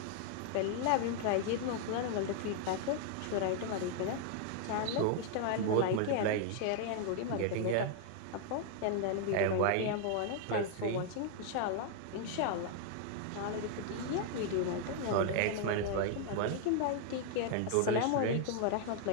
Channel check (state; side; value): different; both; correlation 0.00